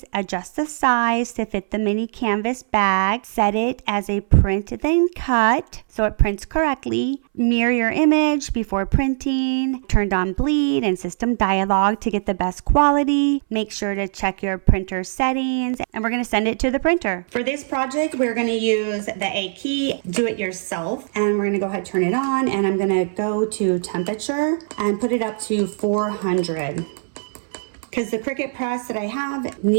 adjust the size to fit the mini canvas bag, set it as a print then cut so it prints correctly, mirror your image before printing, turned on bleed and system dialog to get the best quality, make sure to check your printer settings, and we're going to send it to the printer. For this project, we're going to use the A key, do it yourself, and we're going to go ahead and turn it on, and I'm going to go to temperature and put it up to 400. Because the Cricut press that I have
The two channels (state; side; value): silent; left; 62 dB below the other